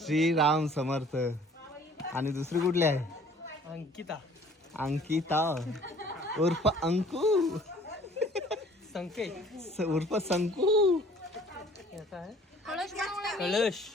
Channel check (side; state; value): both; normal; correlation 0.53